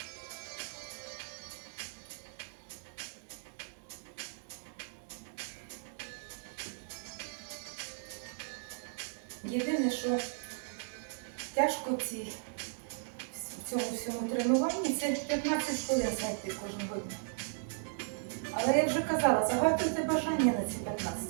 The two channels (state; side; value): silent; left; digital silence